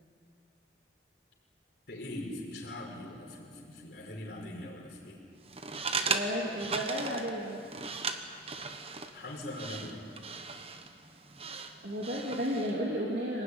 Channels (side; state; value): both; normal; correlation 0.26